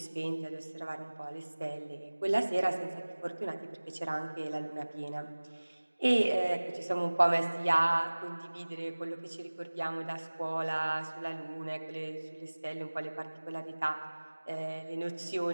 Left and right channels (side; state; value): both; inverted; correlation -1.00